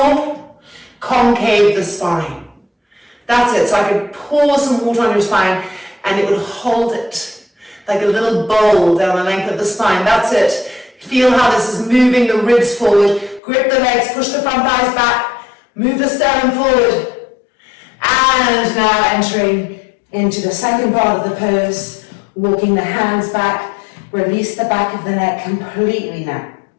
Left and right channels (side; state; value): right; drops out; at 13.4 s